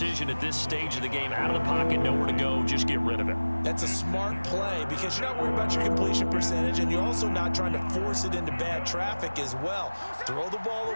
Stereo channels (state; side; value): inverted; both; correlation -1.00